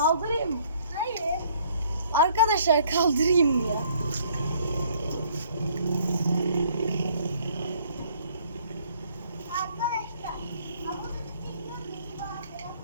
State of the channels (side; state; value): both; inverted; correlation -0.61